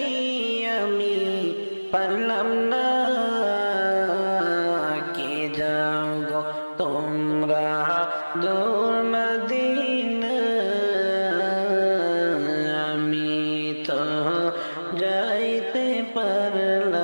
আমি পারলাম না। কে যাও গো তোমরা দূর মদিনা, আমি তো যাইতে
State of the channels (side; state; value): both; inverted; correlation -1.00